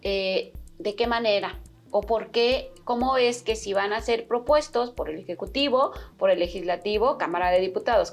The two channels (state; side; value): identical; both; correlation 1.00